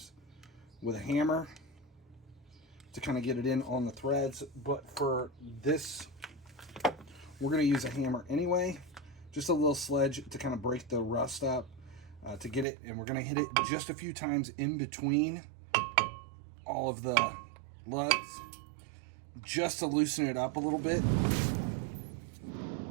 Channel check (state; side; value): drops out; left; at 12.7 s